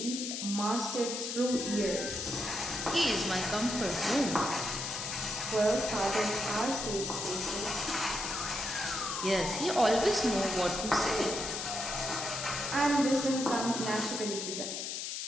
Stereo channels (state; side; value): noise; left; hiss, 4 dB below the sound